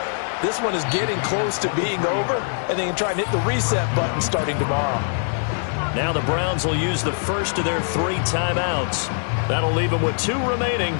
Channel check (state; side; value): silent; right; digital silence